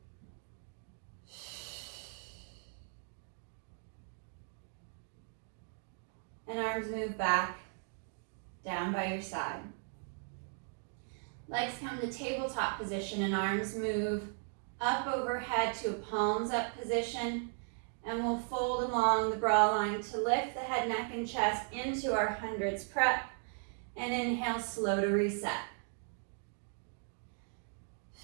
And arms move back, down by your side. Legs come to tabletop position and arms move up overhead to a palms up position. And we'll fold along the bra line to lift the head, neck, and chest into our hundreds prep. And inhale, slow to reset.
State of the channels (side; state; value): left; silent; 53 dB below the other